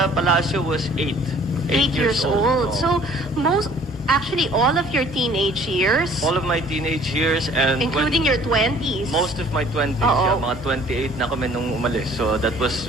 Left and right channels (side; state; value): both; normal; correlation 0.54